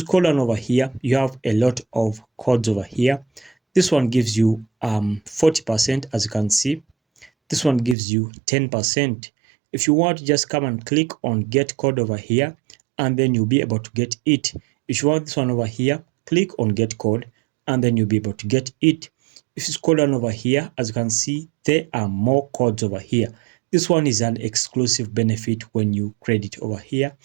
scroll down over here, you have a lot of codes over here. This one gives you 40%, as you can see. This one gives you 10%. If you want, just come and click on get code over here, and then you'll be able to get it. If you want this one over here, click on get code, and then you'll be able to get it. If you scroll down over here, as you can see, there are more codes over here. This one is an exclusive benefit when you credit over here.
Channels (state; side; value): drops out; left; at 8.0 s